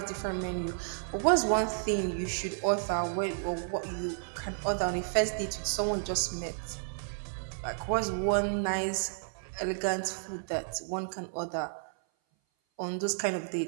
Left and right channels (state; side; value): silent; left; 56 dB below the other